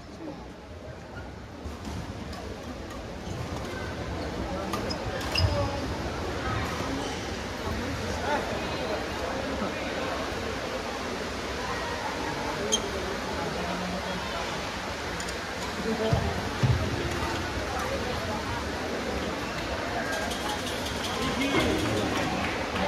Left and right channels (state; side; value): identical; both; correlation 1.00